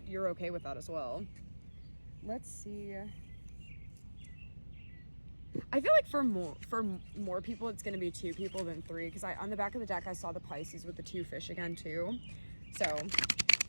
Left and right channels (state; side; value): inverted; both; correlation -1.00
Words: you're okay with that as well. Let's see. I feel like for more people, it's going to be 2 people than 3, because on the back of the deck, I saw the Pisces with the 2 fish again, too. So, okay.